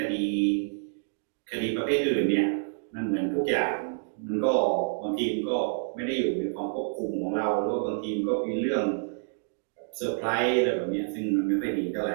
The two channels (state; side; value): silent; left; digital silence